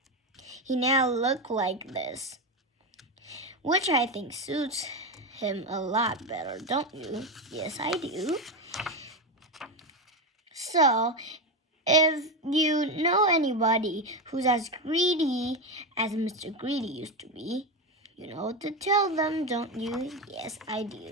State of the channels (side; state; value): both; normal; correlation 0.14